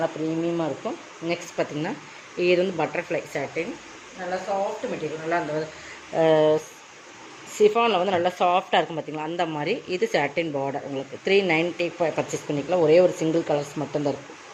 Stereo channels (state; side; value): identical; both; correlation 1.00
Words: ப்ரீமியமாக இருக்கும். நெக்ஸ்ட் பார்த்திங்கன்னா இது வந்து பட்டர்ஃப்ளை சாட்டின். நல்லா சாஃப்ட் மெட்டீரியல். நல்லா அந்த சிஃபானில் வந்து நல்லா சாஃப்ட்டாக இருக்கும் பார்த்திங்களா, அந்த மாதிரி. இது சாட்டின் பார்டர் உங்களுக்கு 390 பர்ச்சேஸ் பண்ணிக்கலாம். ஒரே ஒரு சிங்கிள் கலர்ஸ் மட்டும்தான் இருக்கும்.